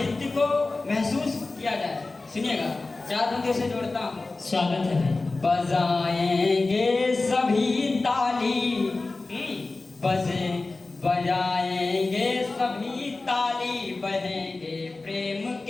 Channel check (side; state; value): right; quieter; 3.4 dB